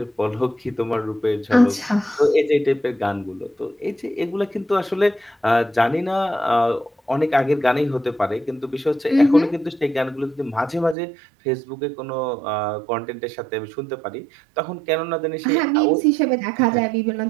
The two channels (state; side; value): drops out; left; at 11.0 s